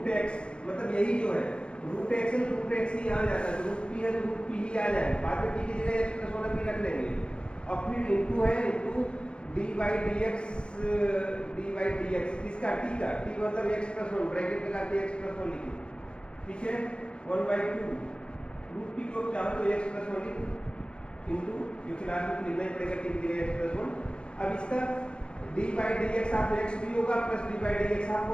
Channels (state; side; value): late; right; 0.055 ms